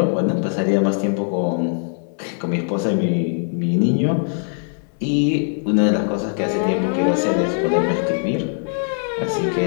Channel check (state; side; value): silent; right; 62 dB below the other